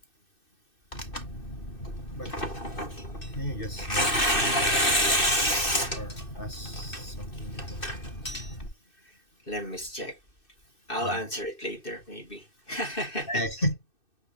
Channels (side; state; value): right; late; 2.6 ms